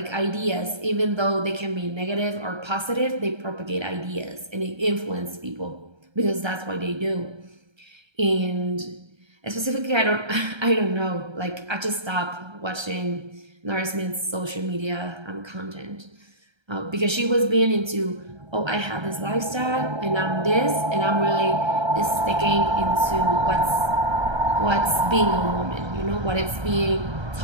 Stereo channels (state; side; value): late; left; 1.3 ms